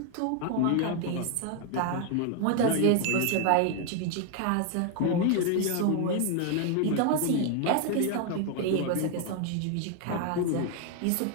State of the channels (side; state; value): both; different; correlation 0.01